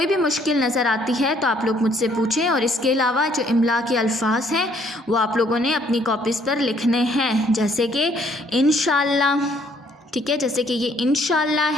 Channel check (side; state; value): both; normal; correlation 0.64